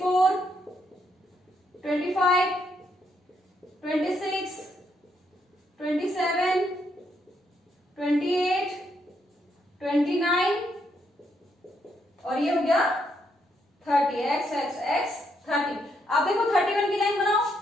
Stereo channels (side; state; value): both; normal; correlation 0.76